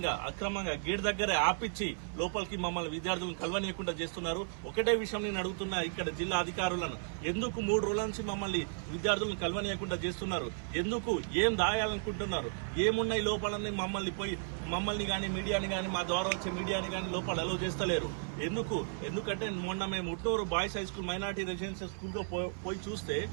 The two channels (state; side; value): silent; left; 55 dB below the other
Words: అక్రమంగా గేట్ దగ్గరే ఆపిచ్చి లోపలికి మమ్మల్ని విద్యార్థులను కలవనీయకుండా చేస్తున్నారు. ఒకటే విషయం నేను అడుగుతున్నా ఇక్కడ జిల్లా అధికారులను, ఎందుకు 3 రోజుల నుంచి మమ్మల్ని విద్యార్థులను కలవనీయకుండా చేస్తున్నారు? ఎందుకు ఏం దాయాలనుకుంటున్నారు? ఏమున్నాయి లోపలని మమ్మల్ని గాని మీడియాని గాని మా ద్వారా వచ్చే మీడియాని గాని లోపల అలౌ చేస్తలేరు. ఎందుకంటే మొన్న మేము Utnoor boys high school minority residential school లో పోయి చూస్తే